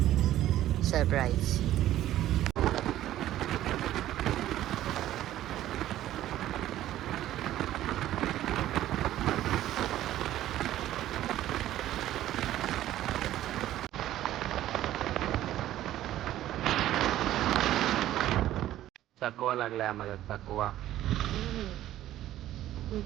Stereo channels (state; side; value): quieter; left; 13.4 dB